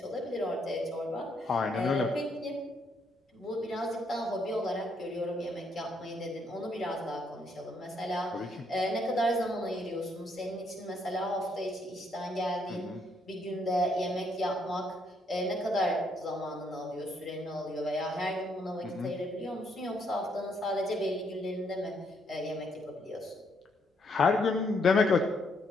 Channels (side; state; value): both; normal; correlation 0.72